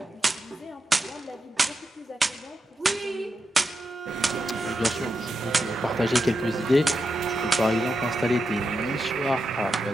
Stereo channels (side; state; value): both; normal; correlation 0.87